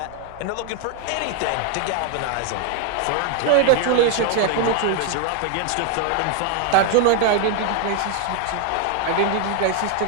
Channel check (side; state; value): both; different; correlation 0.01